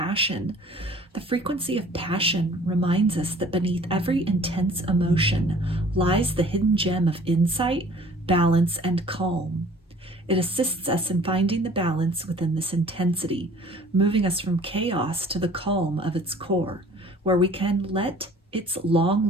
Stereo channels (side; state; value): both; normal; correlation 0.51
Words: The frequency of passion reminds us that beneath every intense emotion lies the hidden gem of insight, balance, and calm. It assists us in finding the balance within this intensity, moving us from chaos to the calm of its core, where we can let its